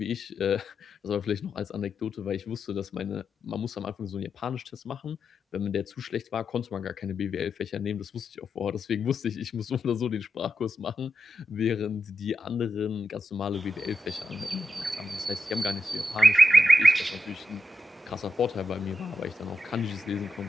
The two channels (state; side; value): normal; both; correlation 0.88